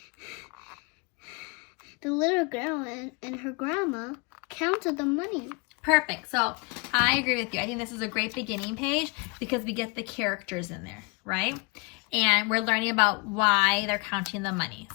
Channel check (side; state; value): right; quieter; 30.9 dB